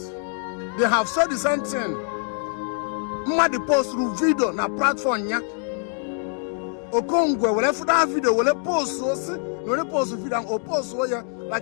they have said the same thing. Mma post through video na platform ya. Okongwu will have that video, will post so no post video and post so ya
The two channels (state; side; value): silent; right; 56 dB below the other